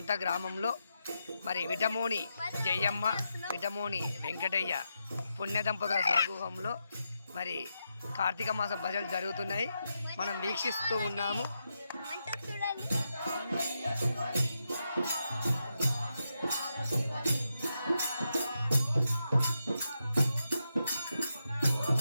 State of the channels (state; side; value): inverted; both; correlation -0.85